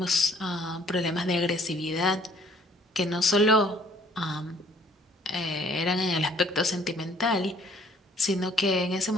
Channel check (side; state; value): both; normal; correlation 0.59